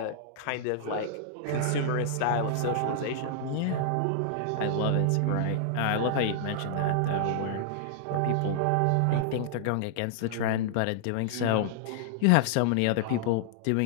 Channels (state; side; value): different; both; correlation -0.01